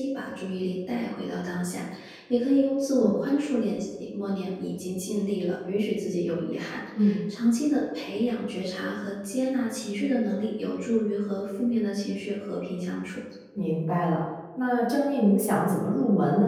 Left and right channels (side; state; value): both; identical; correlation 1.00